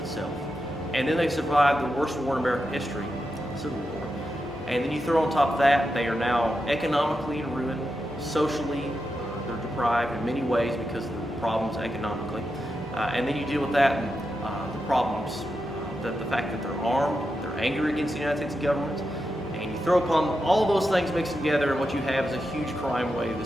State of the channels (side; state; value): both; normal; correlation 0.88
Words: and then they survived the worst war in American history, the Civil War. And then you throw on top of that, they are now economically in ruin, socially they're deprived in many ways because of the problems economically. And then you deal with that and the problems, the fact that they're armed, they're angry against the United States government, and you throw upon all those things mixed together, and what you have is a huge crime wave that